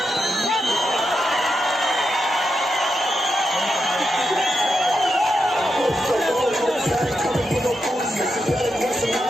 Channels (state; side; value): normal; both; correlation 0.86